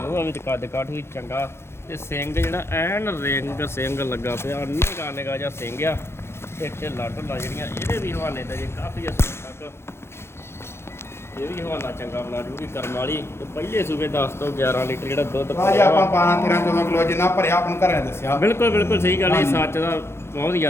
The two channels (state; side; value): late; right; 0.12 ms